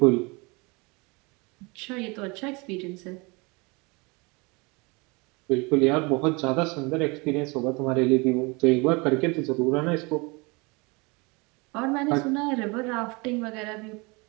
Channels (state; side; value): quieter; left; 27.7 dB